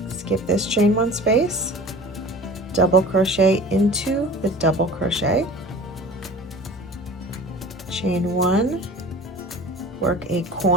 skip this chain 1 space, double crochet into the double crochet, chain 1, work a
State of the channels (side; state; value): both; normal; correlation 0.41